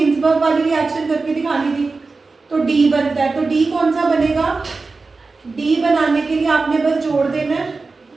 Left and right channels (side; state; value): left; quieter; 4.0 dB